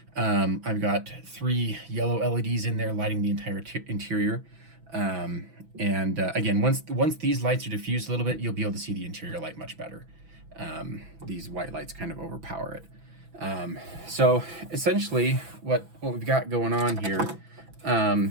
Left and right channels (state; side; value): late; left; 6.0 ms